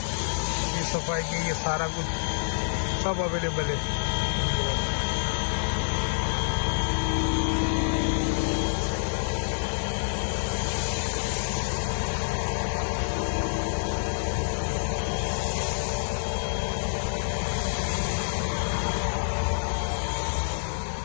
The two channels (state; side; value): silent; right; digital silence